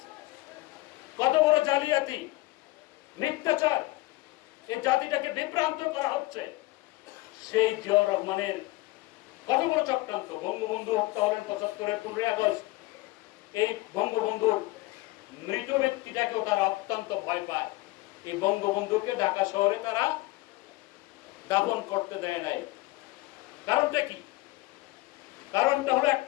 কত বড় জালিয়াতি, মিথ্যাচার! এই জাতিটাকে বিভ্রান্ত করা হচ্ছে। সেই জিয়াউর রহমানের কত বড় চক্রান্ত! বঙ্গবন্ধু হত্যা হলেন ৭৫-এর ১৫ই আগস্ট। এই বঙ্গবন্ধুর মৃত ব্যক্তিটাকেও তারা অত্যন্ত ভয় পায়। এই বঙ্গবন্ধুকে ঢাকা শহরে তারা দাফন করতে দেয় নাই। কারণটা কি? কারণটা হলো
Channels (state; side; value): quieter; right; 20.5 dB